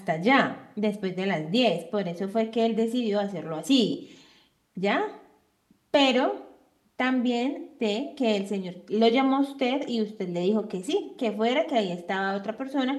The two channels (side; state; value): both; identical; correlation 1.00